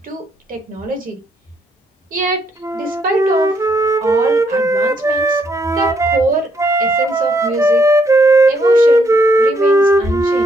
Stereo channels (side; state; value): both; normal; correlation 0.73